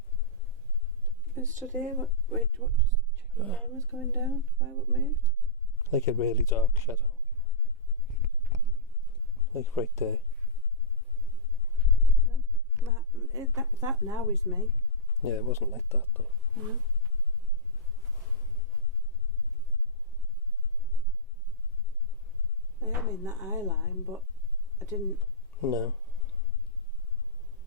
I stood here. What just checking time was going down. Why, what moved? Like a really dark shadow. Like right there. No. That now is me. Yeah, it wasn't like that though. No. I am in that eye line, but I didn't. No.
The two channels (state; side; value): normal; both; correlation -0.15